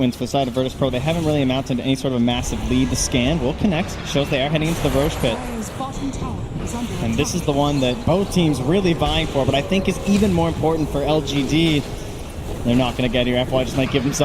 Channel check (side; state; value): both; identical; correlation 1.00